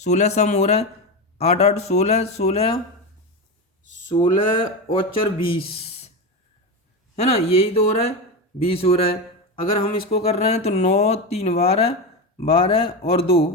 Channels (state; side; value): normal; both; correlation 0.17